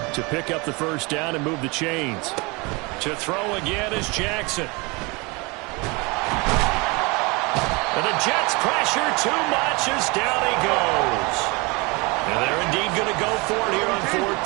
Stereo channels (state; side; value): quieter; left; 27.1 dB